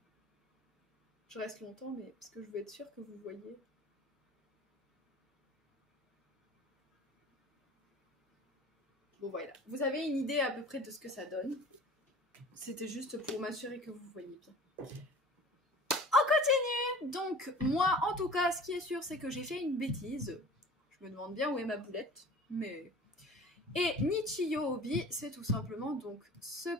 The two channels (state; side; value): normal; both; correlation 0.44